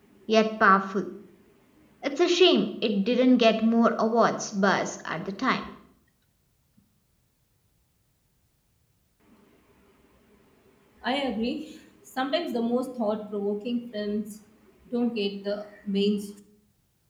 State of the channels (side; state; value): both; identical; correlation 1.00